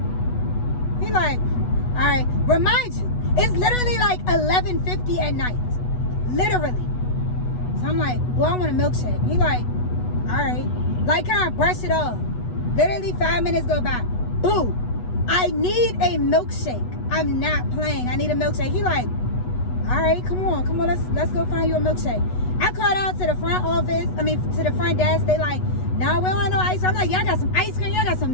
He like, all right, remind you, It's literally like 11:50 at night. Literally. So I'm like, well, I want a milkshake. He like, all right. Like, kind of brush it off. Literally 5 minutes go by. Boo. I need a milkshake. I'm not playing. I need a milkshake. He like, all right, come on, let's go find you a milkshake. I called out to the front office, to the front desk. They like, no, we don't want no ice cream. I'm like, y'all got some ice cream, y'all got some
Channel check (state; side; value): late; right; 8.1 ms